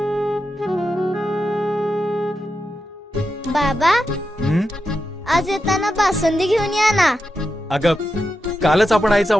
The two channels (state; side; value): normal; both; correlation 0.88